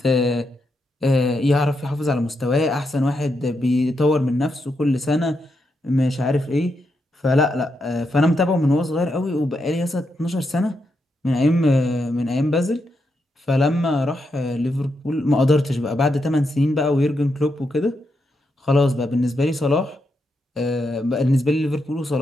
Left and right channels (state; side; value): normal; both; correlation 0.83